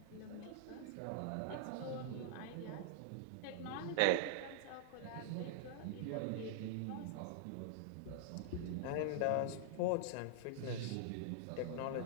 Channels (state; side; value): different; both; correlation 0.00